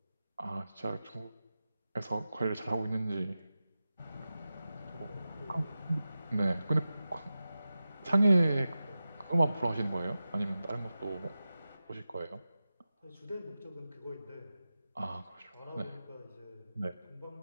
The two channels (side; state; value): both; inverted; correlation -0.94